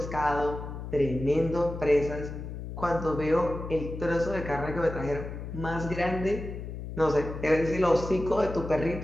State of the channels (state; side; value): noise; left; hum, 8 dB below the sound